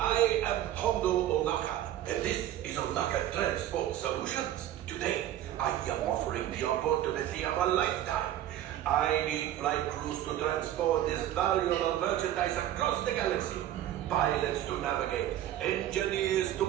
am Hondo Onaka, and this is Onaka Transport Solutions. Today, I am offering the opportunity of a lifetime. I need flight crews to transport this valuable merchandise across the galaxy. Pilots to navigate, engineers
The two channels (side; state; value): left; quieter; 12.3 dB